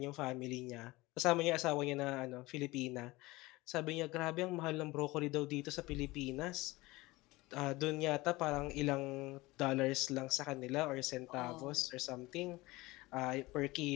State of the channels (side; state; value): right; quieter; 20.8 dB